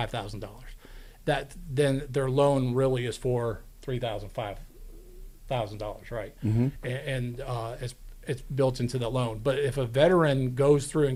Then their loan really is for $5,000, right? And it's built into the loan. But if a veteran goes through and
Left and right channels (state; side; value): identical; both; correlation 1.00